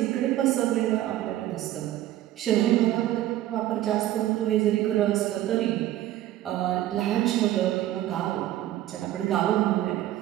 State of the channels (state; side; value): quieter; left; 13.8 dB